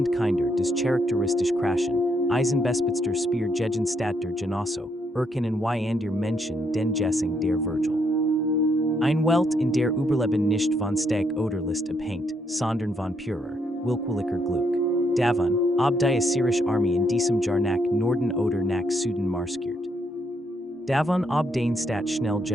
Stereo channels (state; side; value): normal; both; correlation 0.75